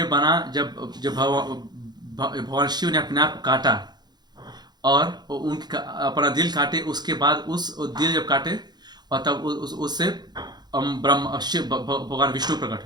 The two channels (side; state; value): left; late; 0.20 ms